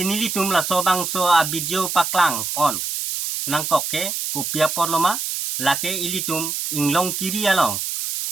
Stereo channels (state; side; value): noise; right; hiss, 3 dB below the sound